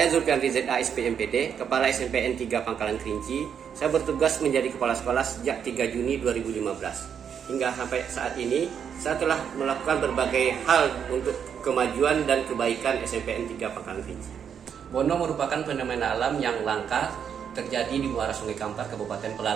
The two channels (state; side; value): quieter; left; 7.8 dB